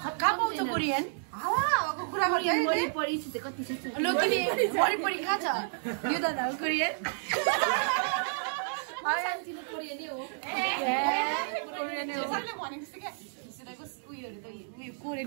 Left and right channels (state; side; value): silent; left; digital silence